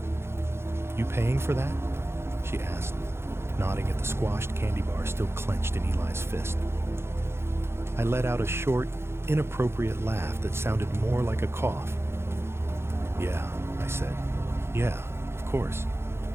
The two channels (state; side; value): late; left; 0.12 ms